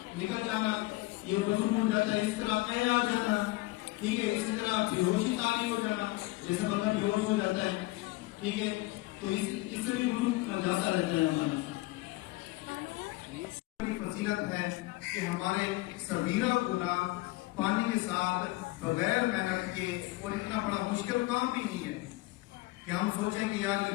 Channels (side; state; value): right; quieter; 20.6 dB